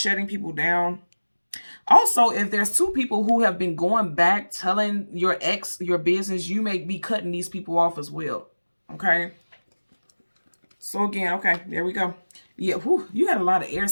people down. Also, if there's 2 people who have been going back telling your ex your business, you may be cutting these people off as well. Okay? So again, okay, there we go. Yeah, whew, you had a lot of air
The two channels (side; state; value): both; inverted; correlation -1.00